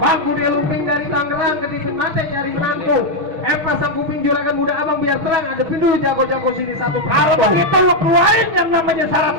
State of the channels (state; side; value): late; left; 6.4 ms